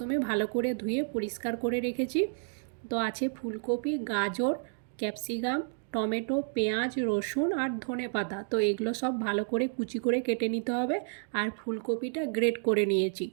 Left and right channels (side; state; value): left; silent; digital silence